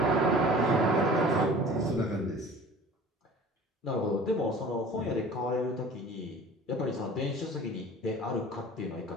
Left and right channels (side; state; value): both; normal; correlation 0.44